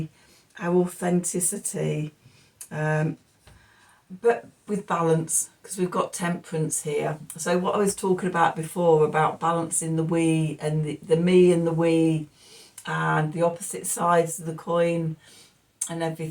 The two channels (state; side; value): identical; both; correlation 1.00